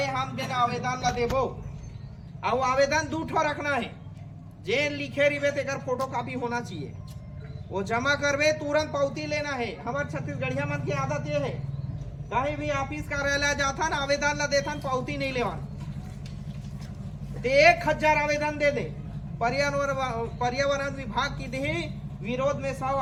हम देना आवेदन ला देबो। और आवेदन 2 ठो रखना है, जे लिखे रिवे तेकर फोटो कॉपी होना चाहिए, वो जमा करवे तुरंत पावती लेना है। हमारे छत्तीसगढ़िया मन की आदत ये है, कहीं भी ऑफिस कार्यालय जाता ना आवेदन ला देता पावती नहीं लेवा, 1000 आवेदन दे दे। पर्यावरण विभाग की दी विरोध में 100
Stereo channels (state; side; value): identical; both; correlation 1.00